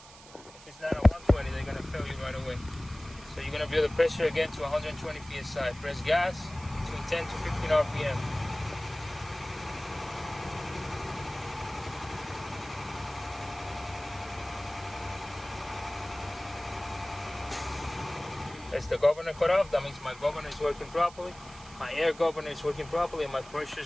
If it's not at 120, they're gonna fail you right away. So you're gonna build the pressure again to 120 psi. Press gas between 10 to 15 RPM. That's the governor cut off. That means my governor is working properly. My air governor is working properly, and my pressure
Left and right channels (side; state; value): right; noise; hiss, 19 dB below the sound